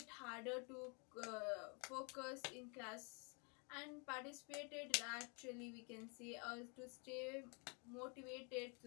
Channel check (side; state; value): right; quieter; 34.9 dB